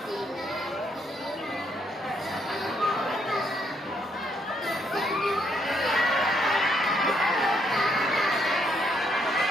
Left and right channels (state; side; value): normal; both; correlation 0.73